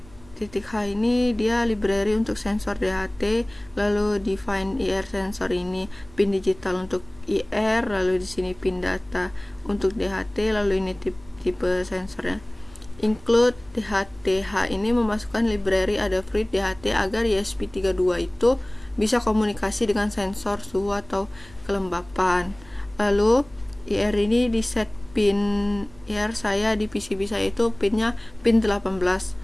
ini dia library untuk sensor DHT, lalu define IR sensor ini pin digital untuk IR, lalu di sini pin data untuk DHT, lalu ini tipe sensornya. Include DHT-H ini memasukkan library Adafruit DHT agar ESP32 itu bisa komunikasi dengan sensor suhu atau kelembapan. Lalu IR ini di set pin IR saya di PCB saya itu pinnya pin 18.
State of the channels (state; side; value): noise; right; rumble, 24 dB below the sound